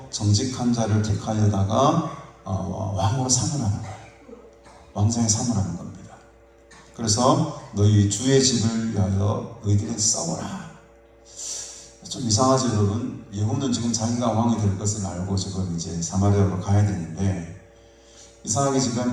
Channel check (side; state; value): both; identical; correlation 1.00